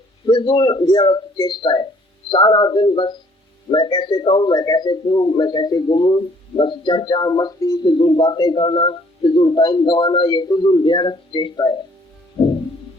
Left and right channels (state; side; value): normal; both; correlation 0.60